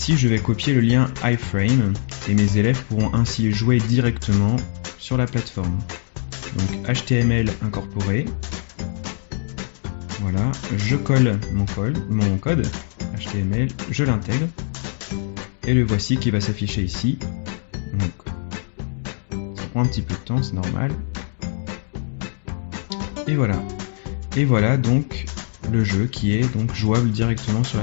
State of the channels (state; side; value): silent; right; digital silence